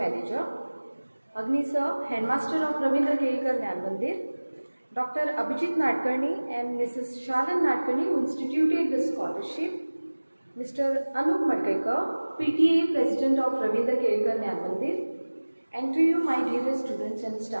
Agni Sir, Headmaster of Ravindra Kedekar Jnana Mandir. Dr. Abhijit Nadkarni and Mrs. Shalan Nadkarni who instituted the scholarship. Mr. Anup Madkaikar, PTA President of Ravindra Kedekar Jnana Mandir. And to you, my dearest students and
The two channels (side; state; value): both; inverted; correlation -1.00